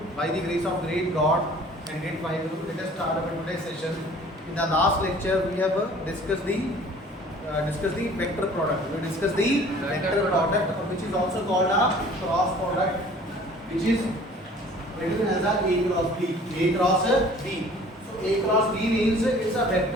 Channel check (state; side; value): normal; both; correlation 0.50